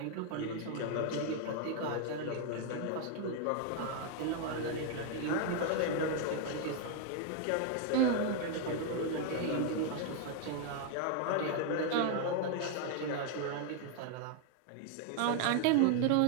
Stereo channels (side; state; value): both; different; correlation 0.00